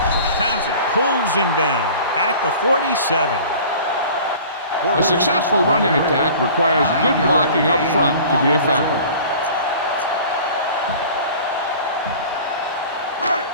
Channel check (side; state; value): both; inverted; correlation -0.43